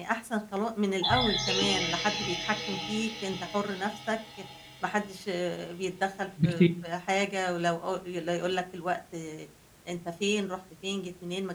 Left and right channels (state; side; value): identical; both; correlation 1.00